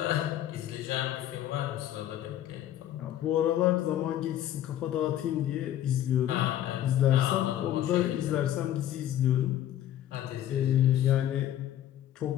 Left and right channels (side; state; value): right; quieter; 11.9 dB